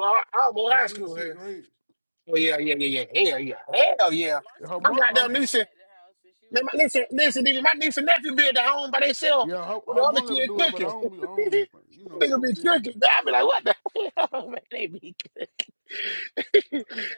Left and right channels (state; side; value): inverted; both; correlation -1.00